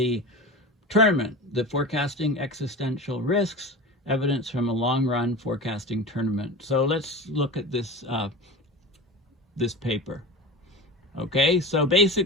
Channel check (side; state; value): both; normal; correlation 0.31